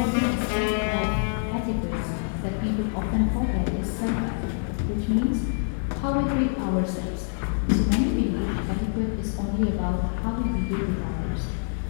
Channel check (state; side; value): silent; right; digital silence